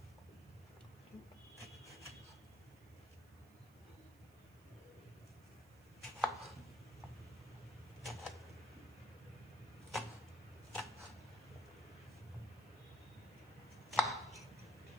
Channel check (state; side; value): noise; right; hiss, 25 dB below the sound